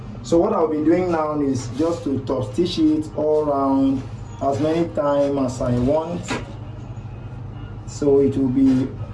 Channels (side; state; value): both; identical; correlation 1.00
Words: So what I'll be doing now is just to top stitch it all around as many times as I want. So it will be